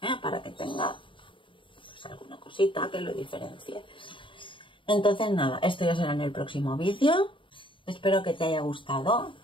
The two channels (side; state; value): right; late; 0.25 ms